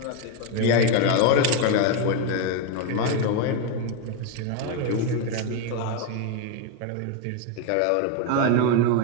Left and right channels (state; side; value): different; both; correlation 0.02